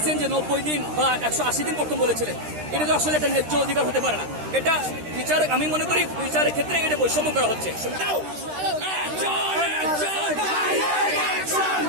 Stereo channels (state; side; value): late; left; 13 ms